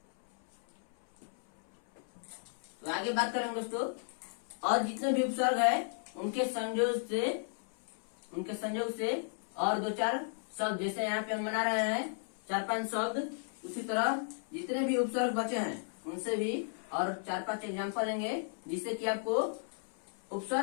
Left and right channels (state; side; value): silent; right; 55 dB below the other